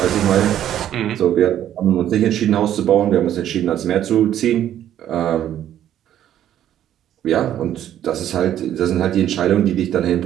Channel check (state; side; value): quieter; left; 11.2 dB